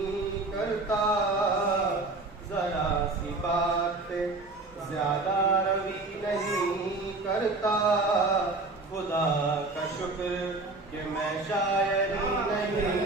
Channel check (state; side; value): quieter; left; 3.2 dB